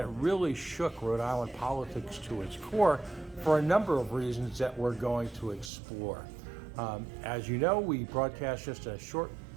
really shook Rhode Island politics to its core for a number of reasons that we're going to explore. As you know, we broadcast just a short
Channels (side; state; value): left; drops out; at 5.7 s